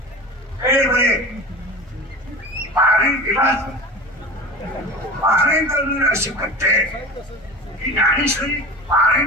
पारायण दिलाच पारायण करणारे असे बच्चे की ज्ञानेश्वरी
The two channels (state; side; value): normal; both; correlation 0.32